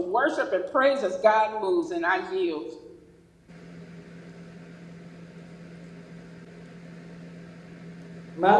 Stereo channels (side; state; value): both; identical; correlation 1.00